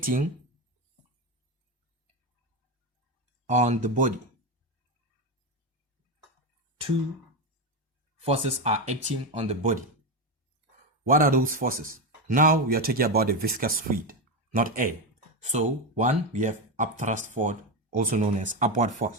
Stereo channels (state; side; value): normal; both; correlation 0.13